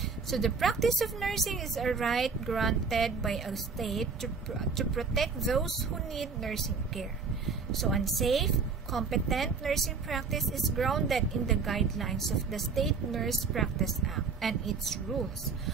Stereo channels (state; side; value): quieter; left; 5.1 dB